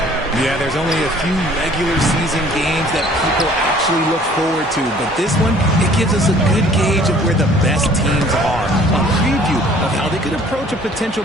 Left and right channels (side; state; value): both; normal; correlation 0.54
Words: Yeah, there's only a few regular season games that people actually look forward to. But this one, it gives us a good gauge of where the best teams are. A preview of how they could approach a potential